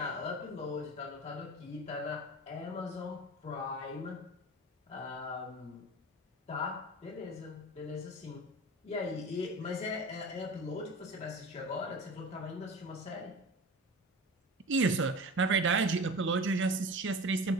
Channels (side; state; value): both; normal; correlation 0.34